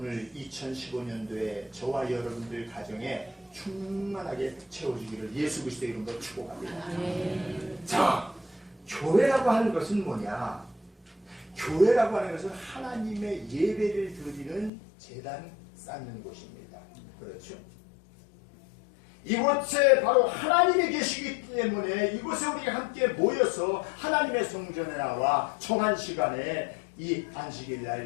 2015년도에 저와 여러분들 가정에 충만하게 채워주기를 예수 그리스도의 이름으로 축복합니다. 자, 교회라고 하는 것은 뭐냐? 교회라고 하는 것은 하나님의 예배를 드리는 제단 쌓는 곳입니다. 그렇죠? 이곳에 바로 하나님이 계시기 때문에 이곳에 우리가 함께 모여서 하나님의 성전에 나와 정한 시간에 이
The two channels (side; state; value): right; drops out; at 14.7 s